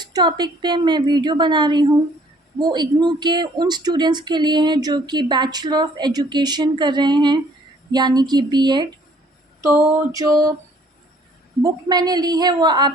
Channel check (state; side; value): normal; both; correlation 0.59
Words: topic पे मैं वीडियो बना रही हूँ वो इग्नू के उन स्टूडेंट्स के लिए हैं जो कि बैचलर ऑफ एजुकेशन कर रहे हैं, यानी कि बीएड। तो जो बुक मैंने ली है वो